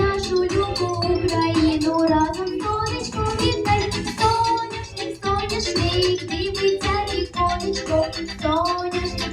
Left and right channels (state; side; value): identical; both; correlation 1.00